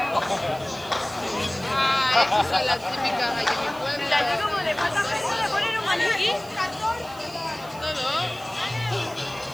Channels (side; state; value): right; noise; hiss, 21 dB below the sound